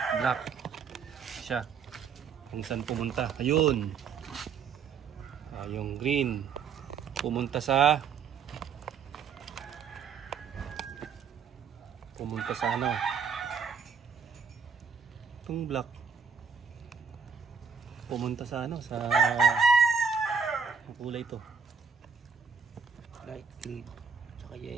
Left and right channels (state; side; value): quieter; left; 6.1 dB